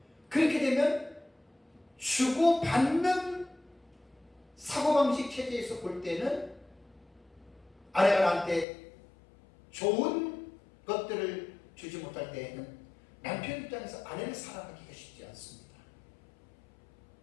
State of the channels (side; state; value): right; drops out; at 8.7 s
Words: 그렇게 되면 주고받는 사고방식 체제에서 볼 때는 아내가 나한테 좋은 것들을 주지 못할 때에는 남편 입장에서 아내를 사랑하기가 쉽지 않습니다.